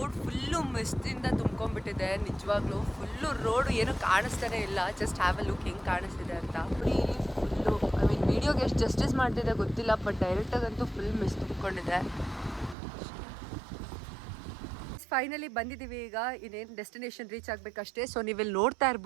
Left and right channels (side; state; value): left; drops out; at 12.8 s